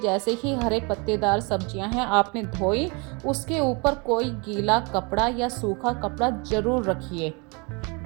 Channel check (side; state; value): left; quieter; 30.5 dB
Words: ही हरे पत्तेदार सब्जियां हैं आपने धोई, उसके ऊपर कोई गीला कपड़ा या सूखा कपड़ा ज़रूर रखिए।